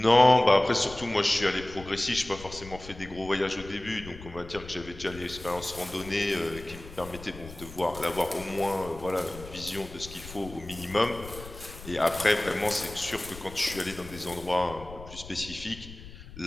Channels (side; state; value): left; noise; rumble, 15 dB below the sound